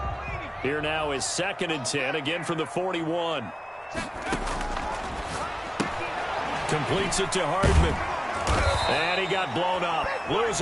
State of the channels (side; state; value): both; identical; correlation 1.00